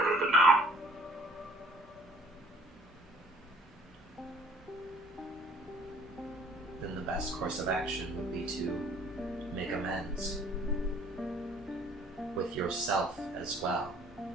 of it now. Then the best course of action would be to make amends with yourself as well.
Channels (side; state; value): both; normal; correlation 0.56